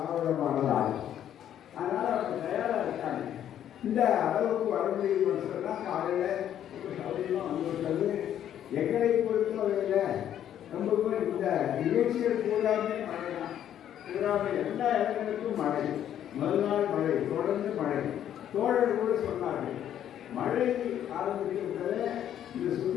மாடல். அதனால அவங்க தயாரா இருக்காங்க. இந்த அளவுக்கு வர முடியும் சொன்னா காலையில் சௌகரியமாக வந்துவிட்டது. எங்களை பொறுத்தவரையில் ரொம்ப இந்த நிகழ்ச்சிகள் பூராமே மழை தான். பூராமே எல்லா இடங்களுக்கும் மழை, முதல் நாள் மழை, தொடர்ந்து மழை. தோழர் கூட சொன்னார்கள், மழை ஆரம்பிக்கிறது இந்த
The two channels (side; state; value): right; quieter; 10.5 dB